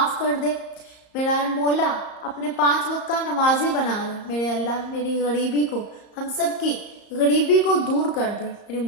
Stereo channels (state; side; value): late; right; 34 ms